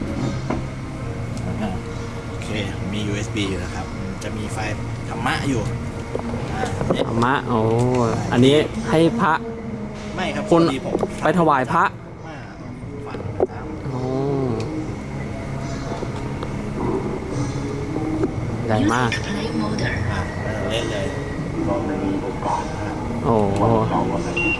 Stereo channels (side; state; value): both; identical; correlation 1.00